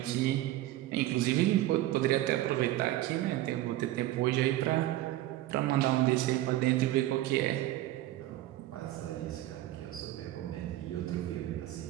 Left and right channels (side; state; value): left; quieter; 15.3 dB